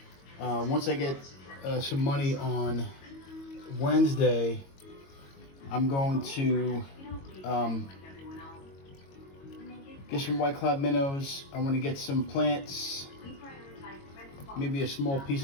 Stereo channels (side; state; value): right; late; 22 ms